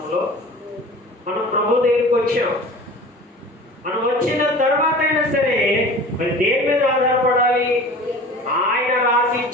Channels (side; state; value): both; normal; correlation 0.40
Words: మనం ప్రభు దగ్గరికి వచ్చాం. మనం వచ్చిన తర్వాత అయినా సరే మరి దేని మీద ఆధారపడాలి? ఆయన రాసి